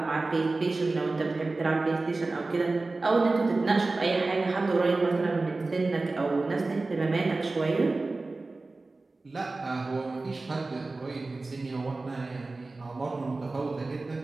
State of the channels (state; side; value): quieter; left; 3.4 dB